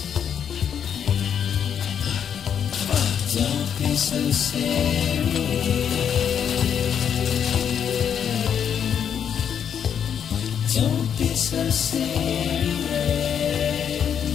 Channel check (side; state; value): right; quieter; 8.2 dB